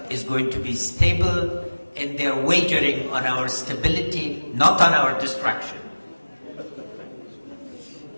is going to be stable and they are wagering on our stability, not on our destruction.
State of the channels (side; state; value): both; inverted; correlation -1.00